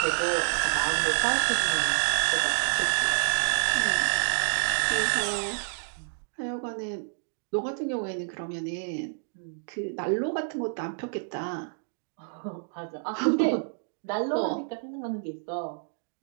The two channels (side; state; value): left; silent; digital silence